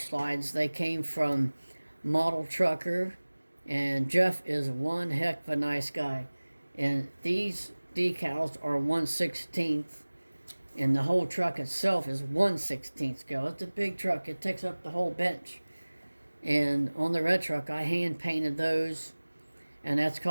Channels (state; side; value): inverted; both; correlation -1.00